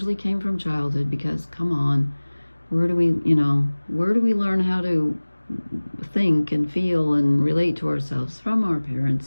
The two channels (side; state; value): both; inverted; correlation -1.00